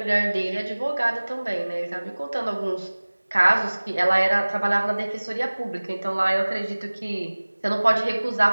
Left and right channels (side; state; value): both; inverted; correlation -1.00